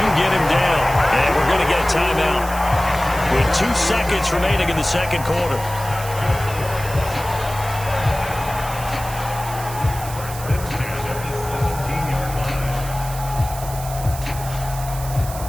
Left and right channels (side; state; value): right; noise; hiss, 12 dB below the sound